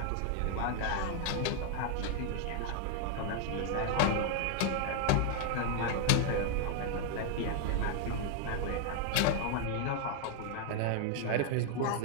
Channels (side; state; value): both; different; correlation 0.00